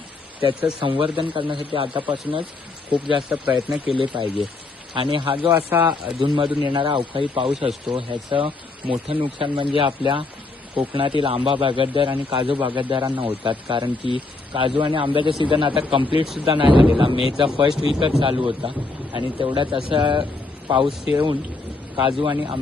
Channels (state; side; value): quieter; right; 3.5 dB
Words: त्याचं संवर्धन करण्यासाठी आतापासूनच खूप जास्त प्रयत्न केले पाहिजे. आणि हा जो असा अधूनमधून येणारा अवकाळी पाऊस असतो ह्याचं मोठं नुकसान म्हणजे आपल्या कोकणातील आंबा बागायतदार आणि काजू बागायतदारांना होतात. कारण की काजू आणि आंब्याचा सीझन आता कंप्लीटसुद्धा नाही झालेला. मेचा फर्स्ट वीकच चालू होता आणि तेवढ्यात असा पाऊस येऊन काजू आणि